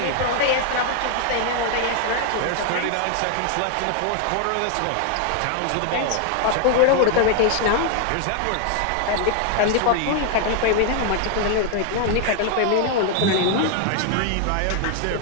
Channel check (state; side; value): different; both; correlation 0.00